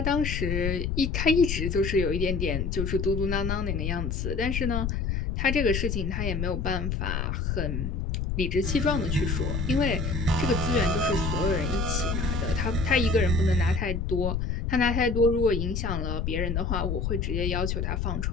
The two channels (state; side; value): noise; left; rumble, 1 dB below the sound